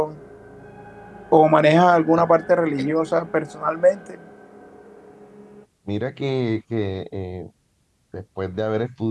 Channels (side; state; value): both; identical; correlation 1.00